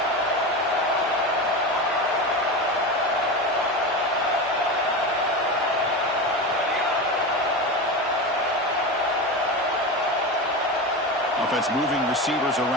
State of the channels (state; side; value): normal; both; correlation 0.23